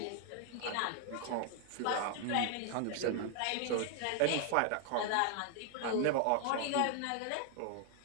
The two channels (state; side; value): different; both; correlation 0.00